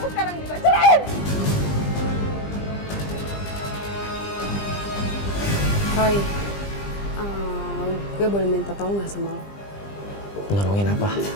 sekarang juga. Ceraiin! Roy, gue boleh minta tolong gak sama lo? Nolongin apa?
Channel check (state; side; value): late; right; 20 ms